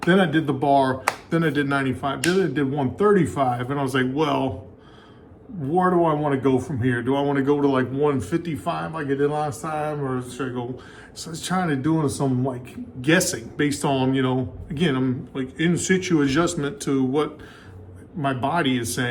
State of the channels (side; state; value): both; identical; correlation 1.00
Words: Then I did the bar, then I did 95, then I did 135, and I was like, well, where do I want to go from here? Do I want to go to like 155 like I did last time, or should I go? So I was trying to do some like guessing based on, again, I'm like in situ adjustment to what my body is